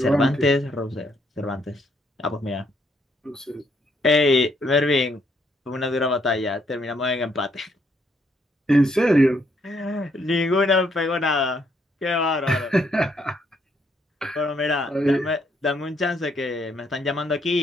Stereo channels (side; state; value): both; normal; correlation 0.72